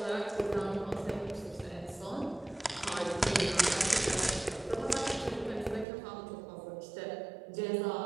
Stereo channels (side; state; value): left; drops out; at 5.9 s